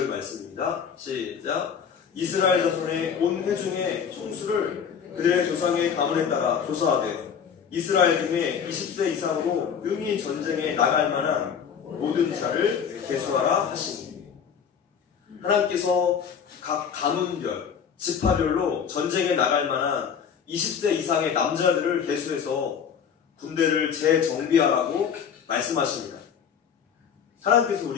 말씀입니다. 시작. 이스라엘 자손의 온 회중의 총수를 그들의 조상의 가문에 따라 조사하되 이스라엘 중에 20세 이상으로 능히 전쟁에 나갈 만한 모든 자를 계수하라 하시니, 하나님께서 각 가문별, 지파별로 전쟁에 나갈 만한 20세 이상의 남자들을 계수해서 군대를 재정비하라고 말씀하십니다. 하나님께서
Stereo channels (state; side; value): quieter; right; 7.3 dB